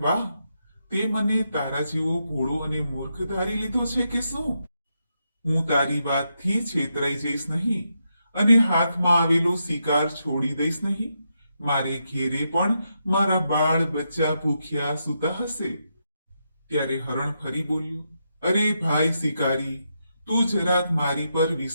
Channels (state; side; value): inverted; both; correlation -0.83